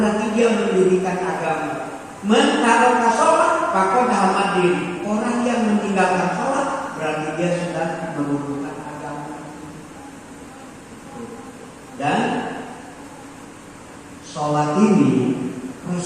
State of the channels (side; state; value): both; identical; correlation 1.00